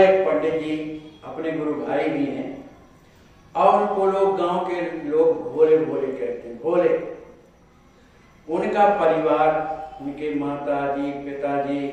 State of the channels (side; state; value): both; identical; correlation 1.00